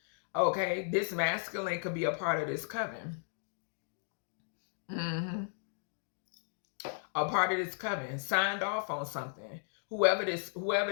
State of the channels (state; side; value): silent; right; digital silence